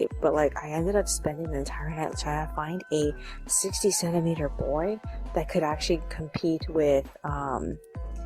but like I ended up spending the entire night trying to find a 60-centimeter boy that could actually compete with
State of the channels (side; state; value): both; identical; correlation 1.00